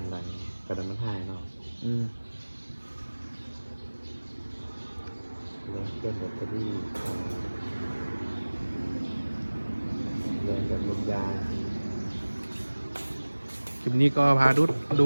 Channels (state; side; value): inverted; both; correlation -1.00